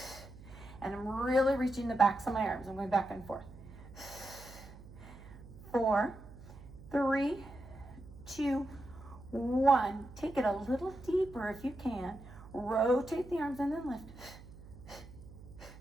And I'm really reaching the backs of my arms. I'm going back and forth. 4, 3, 2, 1. Take it a little deeper if you can. Rotate the arms and then lift.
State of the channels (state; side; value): noise; right; hum, 17 dB below the sound